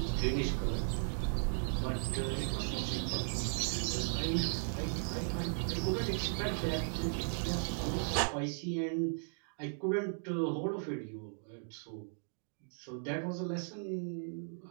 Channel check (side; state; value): left; silent; digital silence